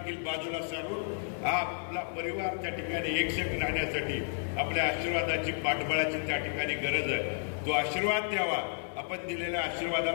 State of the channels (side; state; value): right; silent; 57 dB below the other